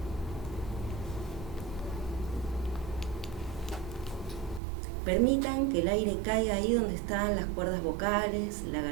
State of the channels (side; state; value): left; drops out; at 4.6 s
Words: Permitan que el aire caiga ahí donde están las cuerdas vocales, la